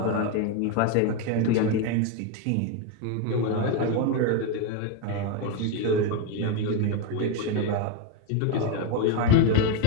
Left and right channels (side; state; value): both; different; correlation 0.02